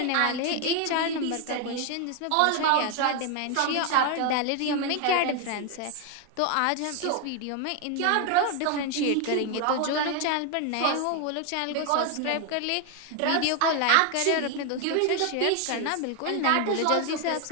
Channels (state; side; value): different; both; correlation 0.01